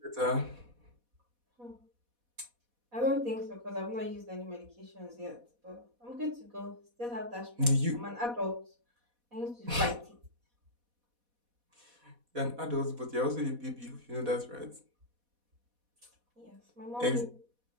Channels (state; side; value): late; left; 4.1 ms